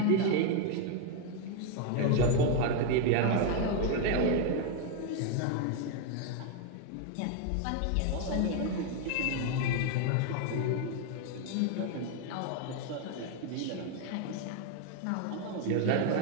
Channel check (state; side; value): different; both; correlation 0.01